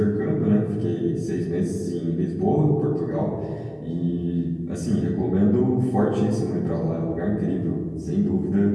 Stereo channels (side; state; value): both; identical; correlation 1.00